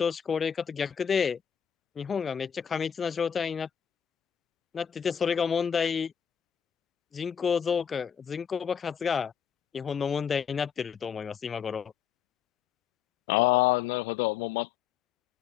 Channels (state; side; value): quieter; right; 7.9 dB